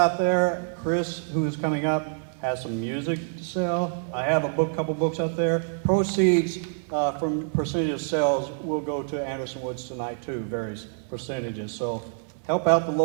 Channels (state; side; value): silent; left; digital silence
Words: there. Kris, who is coming up, has some music to sell. I have a couple books out there. Proceeds from percentage of sales will go to Anderson Woods tonight too, various percentages. So help out the